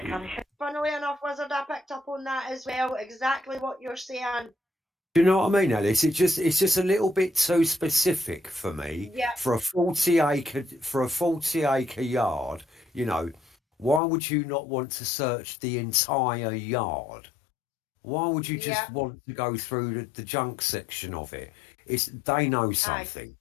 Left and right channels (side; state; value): right; drops out; at 14.0 s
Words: enough, Wizard, I picked up on that as well. Exactly what you're saying. Do you know what I mean, Alice? It's just a little bit too specific for me Yeah, for a 40 acre yard. You know, why would you not want to search the entire yard? Why would you yeah, just want to go through the junk section of it? It's they know aye. something.